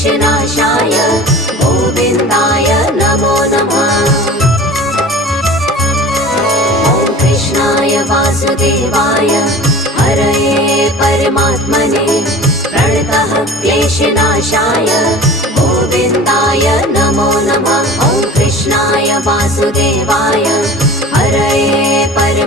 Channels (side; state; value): both; normal; correlation 0.40